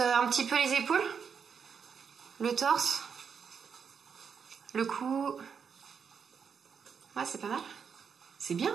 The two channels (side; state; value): left; quieter; 6.6 dB